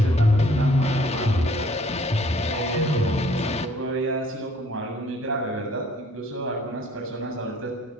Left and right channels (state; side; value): normal; both; correlation 0.59